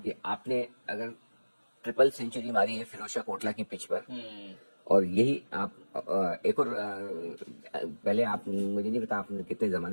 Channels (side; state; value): both; inverted; correlation -1.00